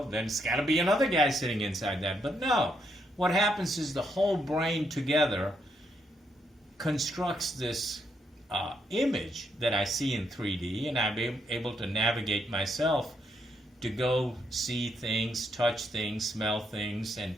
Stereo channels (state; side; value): normal; both; correlation 0.77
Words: then it's got to be another guy sitting inside that. But no. What happens is the whole brain together constructs this image that I see in 3D, and I'm able to navigate myself to go see things, touch things, smell things, and